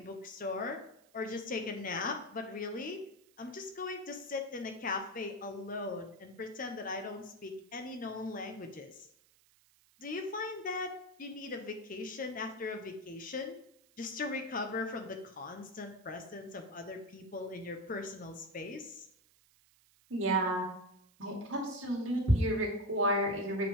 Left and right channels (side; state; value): right; noise; hiss, 29 dB below the sound